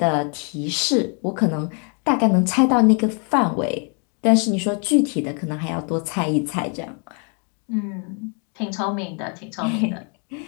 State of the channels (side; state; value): right; quieter; 39.4 dB